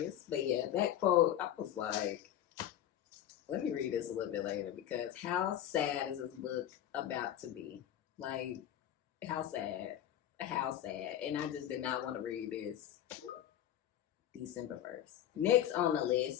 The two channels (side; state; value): right; quieter; 11.2 dB